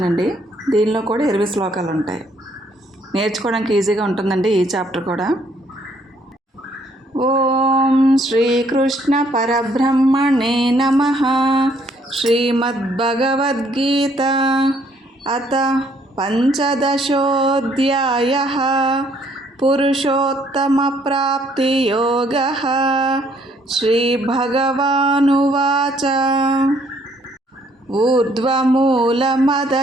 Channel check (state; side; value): normal; both; correlation 0.66